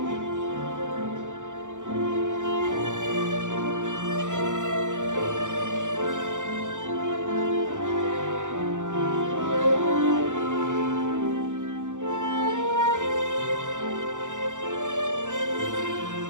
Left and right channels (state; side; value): late; left; 0.86 ms